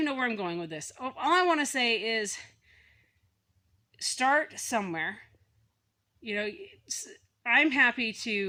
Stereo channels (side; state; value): both; identical; correlation 1.00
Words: know where I'm going with this. All I want to say is start somewhere. You know, I'm happy